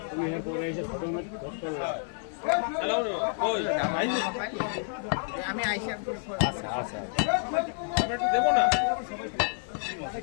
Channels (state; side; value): silent; right; 58 dB below the other